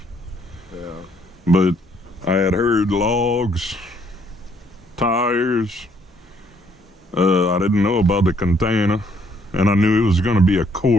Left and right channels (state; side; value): normal; both; correlation 0.67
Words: Yeah. But I had heard logs, tires. I didn't know about the container, and I knew it was going to be a